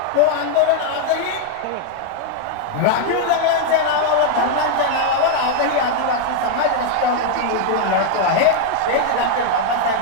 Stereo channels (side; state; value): both; different; correlation 0.00